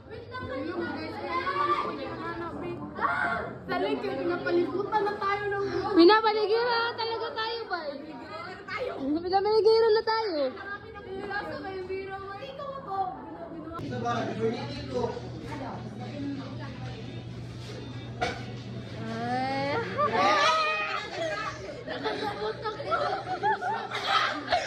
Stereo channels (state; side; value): identical; both; correlation 1.00